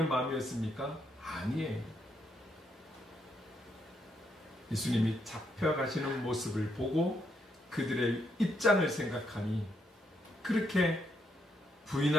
마음이었습니까? 아니에요. 예수님이 잡혀가시는 모습을 보고 그들의 입장을 생각하니 그렇게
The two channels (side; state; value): both; normal; correlation 0.77